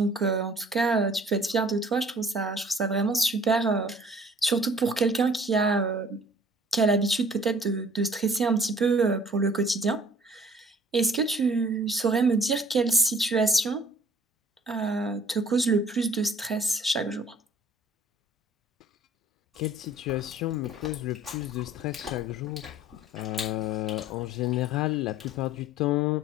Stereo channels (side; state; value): both; normal; correlation 0.53